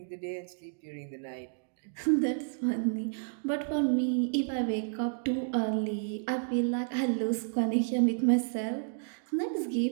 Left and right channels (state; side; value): silent; left; digital silence